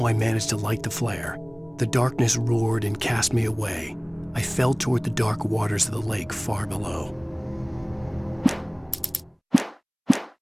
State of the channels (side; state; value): both; identical; correlation 1.00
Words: I managed to light the flare. The darkness roared and cast me away. I fell toward the dark waters of the lake far below.